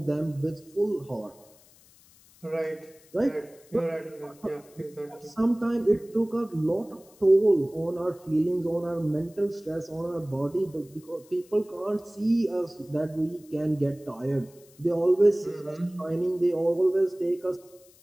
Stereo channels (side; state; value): left; noise; hiss, 27 dB below the sound